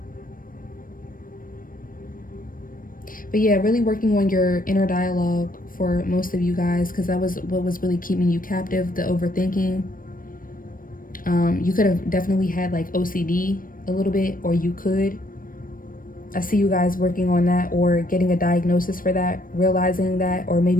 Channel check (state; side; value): late; right; 0.40 ms